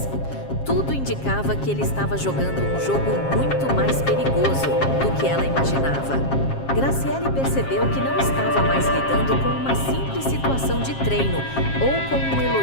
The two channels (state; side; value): late; right; 7.4 ms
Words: tudo indicava que ele estava jogando um jogo muito mais perigoso do que ela imaginava. Graciele percebeu que não estava mais lidando com uma simples situação de treino ou com um